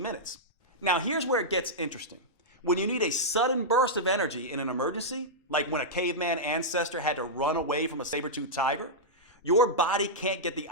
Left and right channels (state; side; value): normal; both; correlation -0.09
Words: minutes. Now here's where it gets interesting. When you need a sudden burst of energy in an emergency, like when a caveman ancestor had to run away from a saber-toothed tiger, your body can't get the